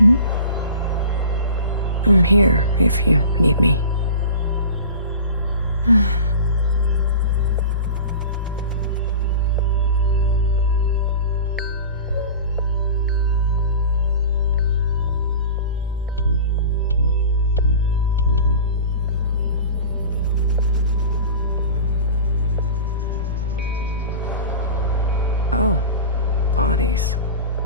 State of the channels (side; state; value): both; inverted; correlation -0.36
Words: I'm here, if you need me. Oh, bodies.